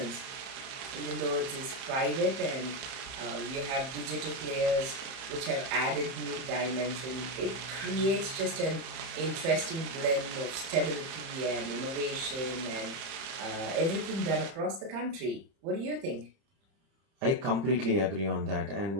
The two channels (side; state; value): left; late; 31 ms